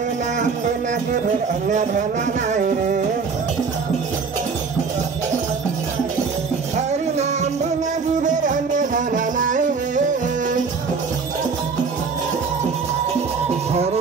Nam Bina Kibir Anya Dhana Nai Re, Hari Nam Bina Kibir Anya Dhana Nai Re,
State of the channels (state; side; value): quieter; left; 5.1 dB